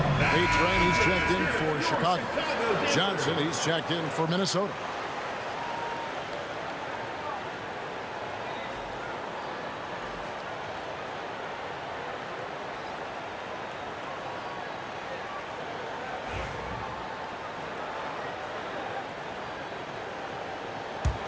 A-Train, he's checked in for Chicago. Johnson, he's checked in for Minnesota.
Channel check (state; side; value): identical; both; correlation 1.00